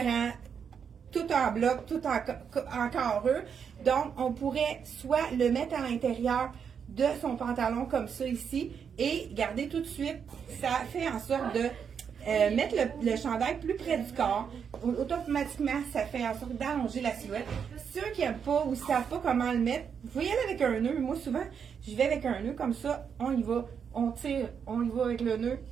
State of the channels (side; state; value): left; quieter; 7.1 dB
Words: tout en bloc, tout en carreux. Donc, on pourrait soit le mettre à l'intérieur de son pantalon comme ça ici et garder tout de suite, ça fait en sorte de mettre le chandail plus près du corps. Automatiquement, ça fait en sorte d'allonger la silhouette. Ceux qui n'aiment pas ou ne savent pas comment le mettre, vous pouvez y aller avec un nœud. Moi, souvent, je vais avec un nœud comme ça, on y va, on tire, on y va avec le nœud,